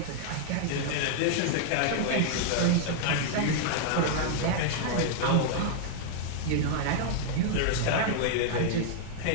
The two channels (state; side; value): different; both; correlation -0.01